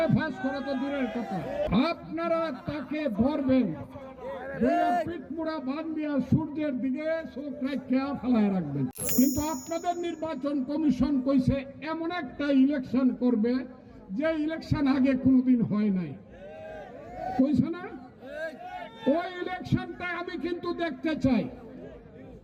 ফাঁস করা তো দূরের কথা। আপনারা তাকে ধরবেন, পিঠমুড়া বান্ধিয়া সূর্যের দিকে চোখ রাখিয়া ফেলায় রাখবেন। কিন্তু আপনাদের নির্বাচন কমিশন কইছে এমন একটা ইলেকশন করবে যে ইলেকশন আগে কোনোদিন হয় নাই, কইছে না? ওই ইলেকশনটা আমি কিন্তু দেখতে চাই,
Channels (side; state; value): both; identical; correlation 1.00